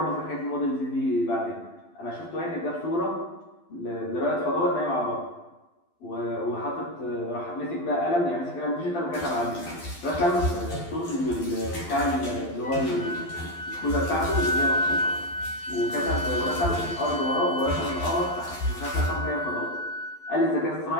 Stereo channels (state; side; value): late; right; 12 ms